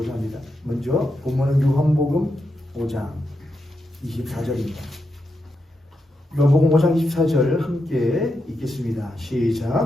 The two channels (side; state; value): both; normal; correlation 0.85